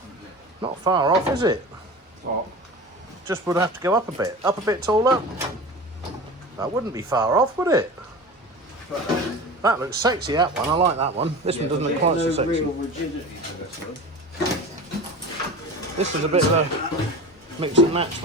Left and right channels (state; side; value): normal; both; correlation 0.33